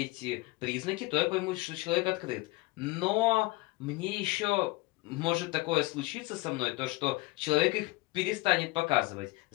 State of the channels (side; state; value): right; quieter; 21.6 dB